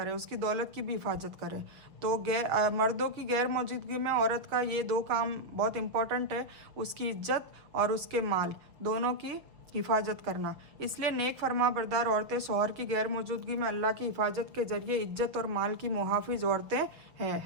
उसकी दौलत की भी हिफाजत करे। तो मर्दों की गैर मौजूदगी में औरत का ये दो काम बहुत इम्पोर्टेंट है, उसकी इज्जत और उसके माल दोनों की हिफाजत करना। इसलिए नेक फरमाबरदार औरतें शौहर की गैर मौजूदगी में अल्लाह की हिफाजत के जरिए इज्जत और माल की मुहाफिज औरतें हैं,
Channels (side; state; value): left; late; 6.5 ms